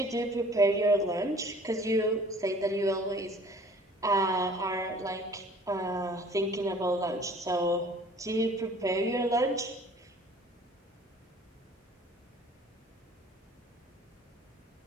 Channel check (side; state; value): both; normal; correlation 0.51